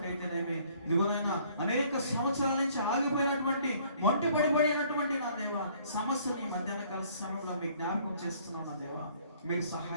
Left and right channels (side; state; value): both; inverted; correlation -0.59